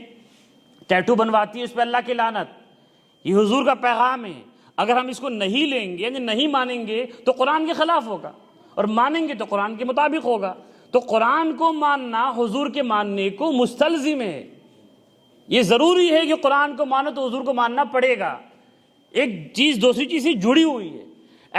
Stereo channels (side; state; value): both; identical; correlation 1.00